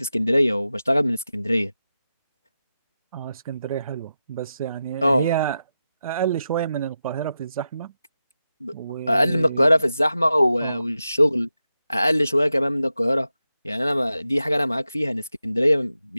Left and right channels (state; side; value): inverted; both; correlation -0.90